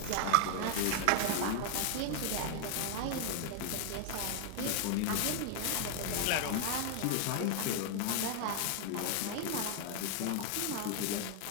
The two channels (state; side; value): different; both; correlation 0.00